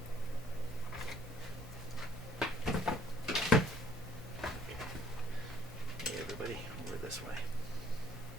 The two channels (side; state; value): both; normal; correlation 0.60